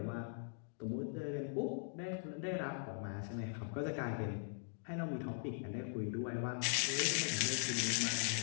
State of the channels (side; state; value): right; silent; digital silence